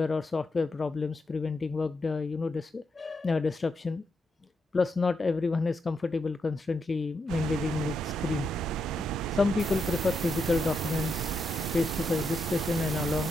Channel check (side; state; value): both; normal; correlation 0.82